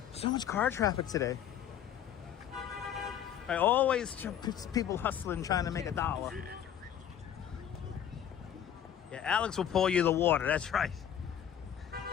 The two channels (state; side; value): quieter; right; 9.7 dB